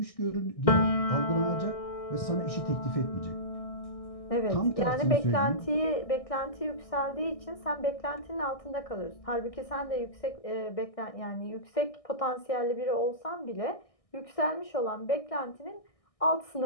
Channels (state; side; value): late; right; 1.6 ms